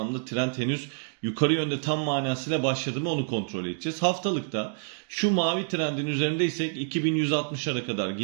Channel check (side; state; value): left; silent; digital silence